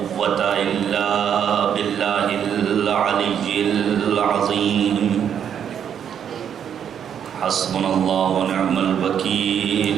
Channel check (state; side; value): quieter; left; 8.6 dB